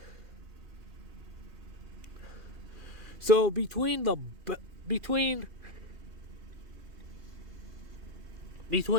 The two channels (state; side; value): late; left; 2.5 ms